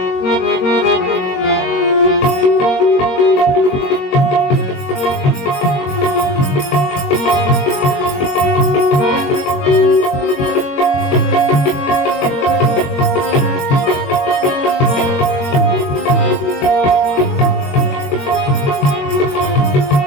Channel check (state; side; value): late; right; 21 ms